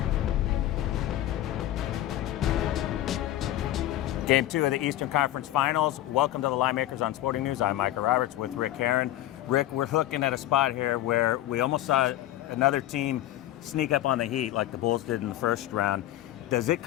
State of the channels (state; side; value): quieter; right; 14.0 dB